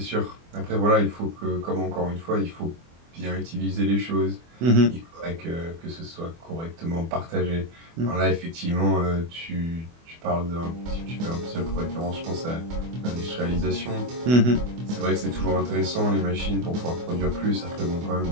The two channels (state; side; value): late; left; 24 ms